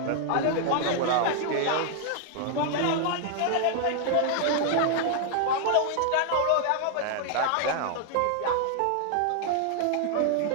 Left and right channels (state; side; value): different; both; correlation 0.00